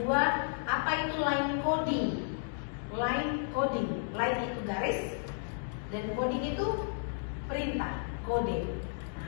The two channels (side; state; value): right; silent; digital silence